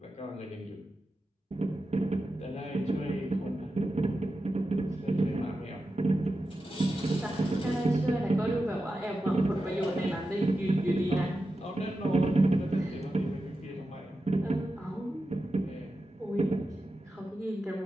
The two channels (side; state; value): both; normal; correlation 0.91